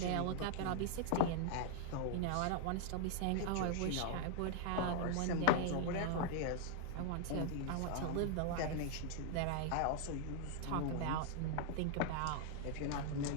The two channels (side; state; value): both; different; correlation -0.01